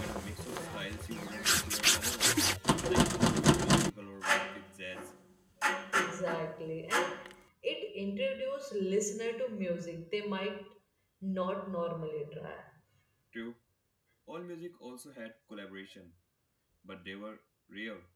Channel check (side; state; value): both; identical; correlation 1.00